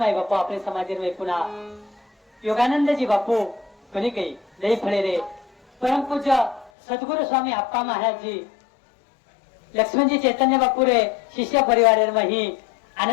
बापू आपले समाजामध्ये पुन्हा योगानंदजी बापू कोणी काही लई फळे रे परमपूज्य सद्गुरु स्वामी अप्पा महाराज जी लक्ष्मणजी चैतन्य बापू रे शिष्य परिवार मही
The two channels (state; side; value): drops out; right; at 6.7 s